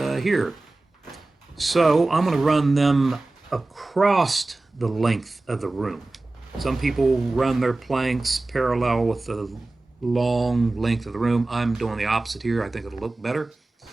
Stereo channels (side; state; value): left; quieter; 3.1 dB